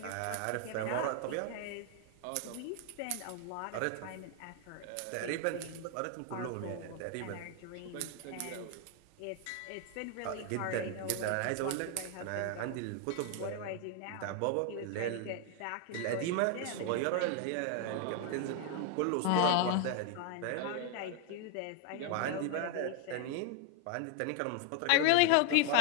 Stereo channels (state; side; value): different; both; correlation 0.00